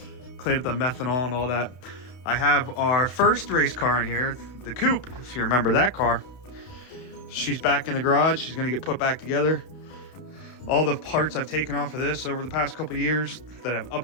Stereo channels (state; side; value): late; right; 32 ms